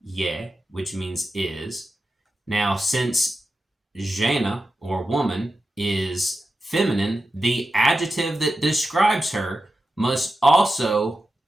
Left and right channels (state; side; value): normal; both; correlation 0.91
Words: je, which means is. Now, since žena or woman is feminine, the adjective that describes her must also